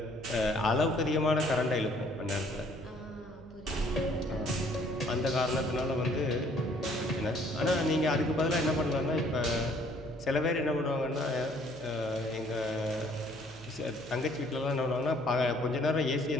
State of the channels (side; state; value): right; noise; hum, 21 dB below the sound